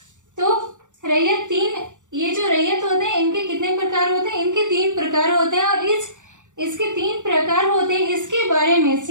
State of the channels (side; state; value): left; late; 0.86 ms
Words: तो रैयत 3, ये जो रैयत होते हैं इनके कितने प्रकार होते हैं? इनके 3 प्रकार होते हैं। और इसके 3 प्रकार होते हैं, इसके बारे में